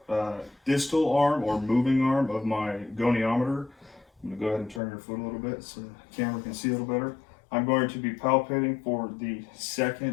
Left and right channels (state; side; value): drops out; right; at 4.8 s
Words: distal arm or moving arm of my goniometer, I'm going to go ahead and turn your foot a little bit so the camera can see a little better. I'm going to be palpating for the